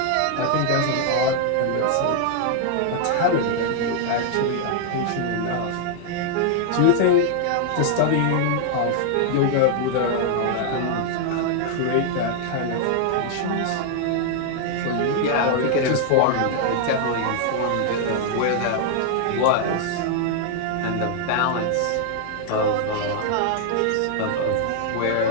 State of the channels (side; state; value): both; different; correlation 0.00